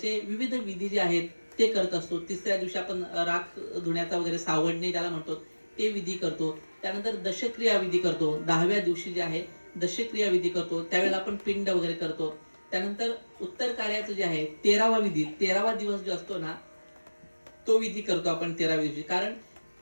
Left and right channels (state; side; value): inverted; both; correlation -1.00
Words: विविध विधी जे आहेत ते करत असतो. तिसऱ्या दिवशी आपण राख धुण्याचा वगैरे सावडणे त्याला म्हणतो ते विधी करतो. त्यानंतर दशक्रिया विधी करतो. 10व्या दिवशी जे आहे दशक्रिया विधी करतो, त्यावेळेला आपण पिंड वगैरे करतो. त्यानंतर उत्तर कार्याचं जे आहे 13वा विधी, 13वा दिवस जो असतो ना तो विधी करतो आपण 13व्या दिवशी. कारण